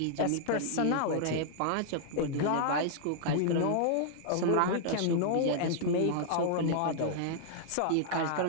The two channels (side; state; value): both; different; correlation -0.01